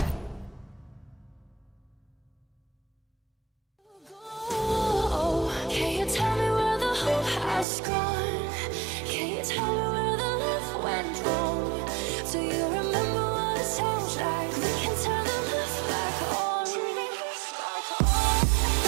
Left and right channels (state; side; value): drops out; left; at 7.7 s